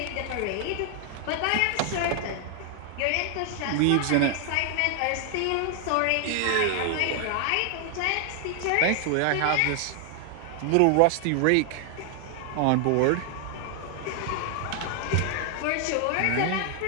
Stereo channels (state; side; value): different; both; correlation 0.00